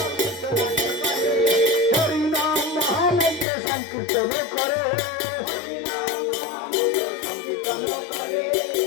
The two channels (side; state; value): right; drops out; at 3.5 s